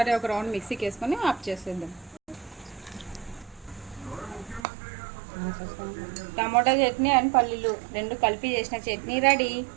ఒక రౌండ్ మిక్సీకి వేసుకొని ఆఫ్ చేసేద్దాం. టమాటా చట్నీ అండ్ పల్లీలు రెండు కలిపి చేసిన చట్నీ రెడీ.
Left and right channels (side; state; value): left; drops out; at 4.7 s